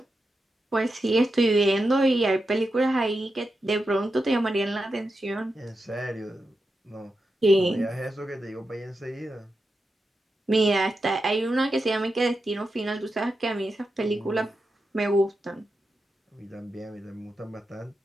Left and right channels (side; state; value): both; normal; correlation 0.88